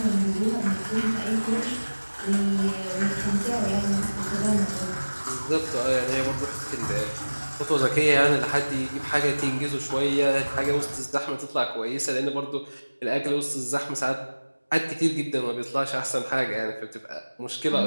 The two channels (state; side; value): inverted; both; correlation -1.00